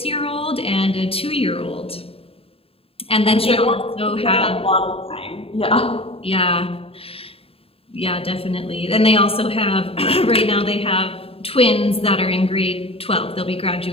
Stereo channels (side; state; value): right; late; 0.27 ms